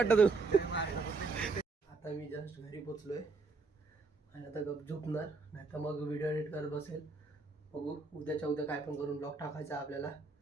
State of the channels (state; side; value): quieter; left; 4.0 dB